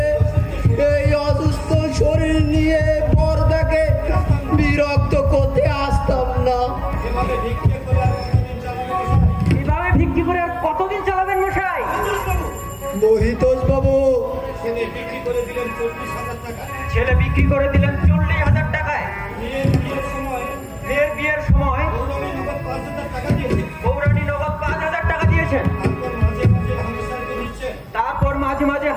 এই অসুস্থ শরীর নিয়ে বরদাকে বিরক্ত করতে আসতাম না। এভাবে ভিক্ষে করে আর কতদিন চালাবে? এভাবে ভিক্ষি করে আর কতদিন চালাবেন মশাই? মহিতোষ বাবু, ছেলে বিক্রি করে দিলেন 40,000 টাকা। ছেলে বিক্রি করে দিলেন 40,000 টাকায়। মেয়ের বিয়ের সময় মেয়ের বিয়ের সময় গৌরবী নগদ 5,000 টাকা দিয়েছে। গৌরানী নগদ 5,000 টাকা দিয়েছেন। তারপর মাঝে মাঝে হামেশাকে দিচ্ছেন। তারপর মাঝে মাঝে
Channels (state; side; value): identical; both; correlation 1.00